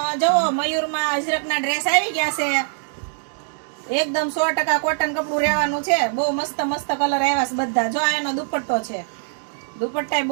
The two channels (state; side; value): silent; left; digital silence